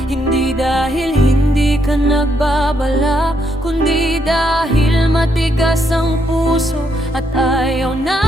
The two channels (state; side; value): normal; both; correlation 0.76